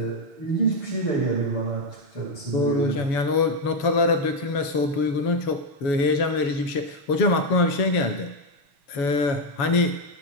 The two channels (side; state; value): right; late; 7.1 ms